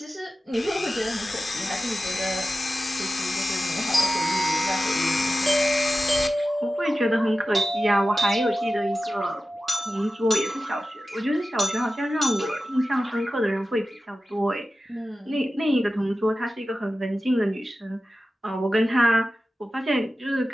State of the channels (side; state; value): both; normal; correlation 0.94